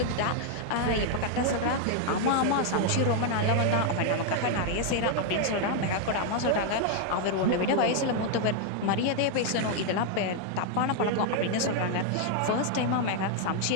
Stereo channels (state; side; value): different; both; correlation 0.00